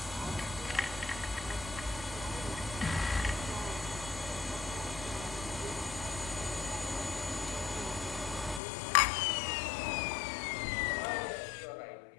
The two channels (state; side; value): drops out; right; at 8.6 s